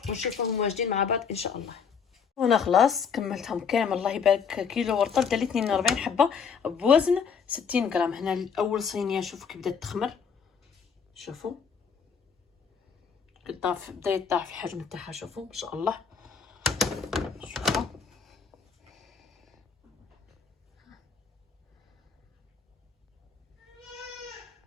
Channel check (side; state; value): right; quieter; 6.3 dB